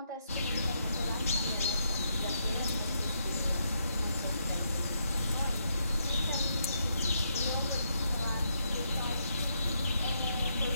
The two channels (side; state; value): both; inverted; correlation -0.78